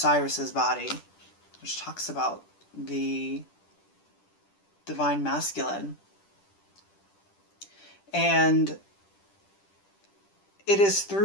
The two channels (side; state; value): right; late; 10 ms